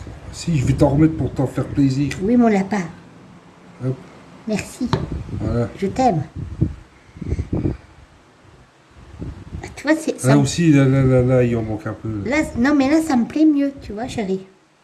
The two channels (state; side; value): identical; both; correlation 1.00